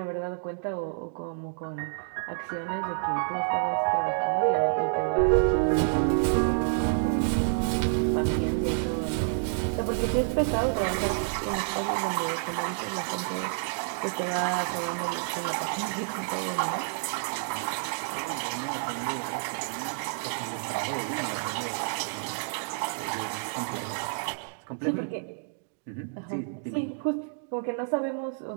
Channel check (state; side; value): silent; left; digital silence